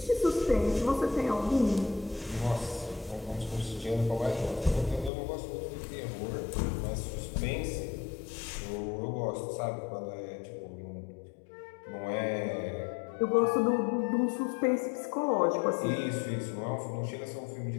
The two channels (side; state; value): right; drops out; at 5.1 s